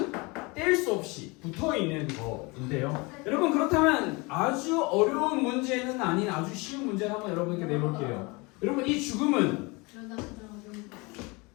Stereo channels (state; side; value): quieter; right; 26.5 dB